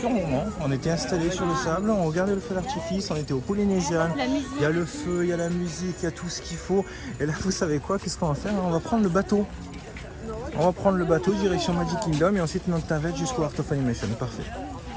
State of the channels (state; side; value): identical; both; correlation 1.00